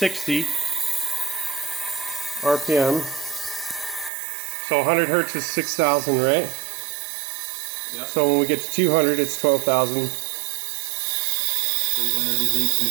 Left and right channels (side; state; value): left; drops out; at 4.1 s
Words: RPM. So 100 hertz is 6,000, right? Yep. So when we get to 200, it's 12,000. 300 is